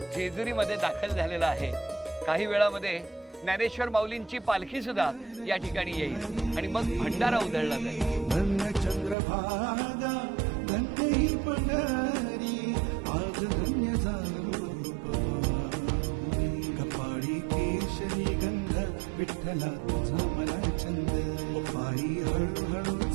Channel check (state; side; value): drops out; left; at 9.2 s